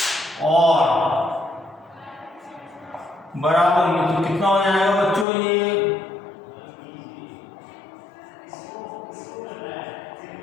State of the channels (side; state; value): right; drops out; at 5.2 s